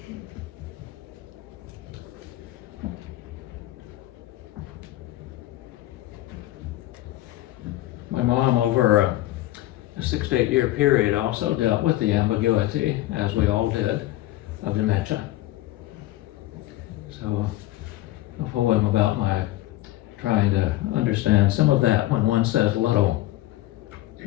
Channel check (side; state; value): right; quieter; 15.9 dB